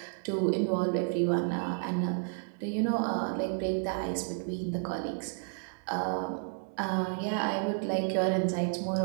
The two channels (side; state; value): left; silent; 57 dB below the other